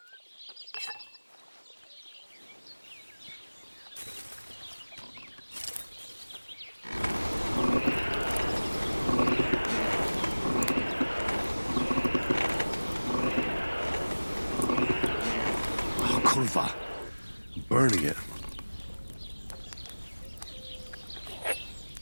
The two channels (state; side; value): inverted; both; correlation -1.00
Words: Oh, kurwa. I'm burning it.